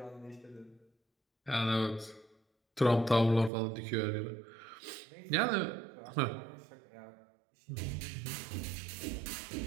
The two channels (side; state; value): left; drops out; at 3.5 s